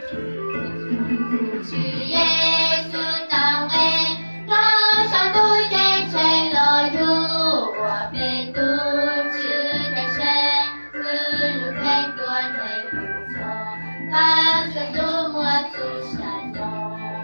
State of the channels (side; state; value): both; inverted; correlation -1.00